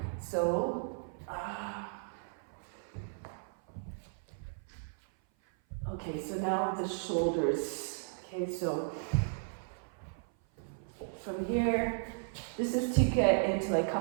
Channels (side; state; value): left; silent; 54 dB below the other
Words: So. Okay. So now the shoulders. Okay. So from here, this is to get into like